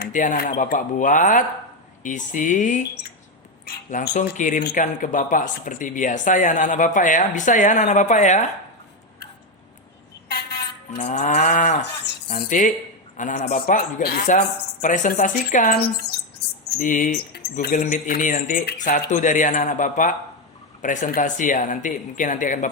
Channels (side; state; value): both; normal; correlation 0.08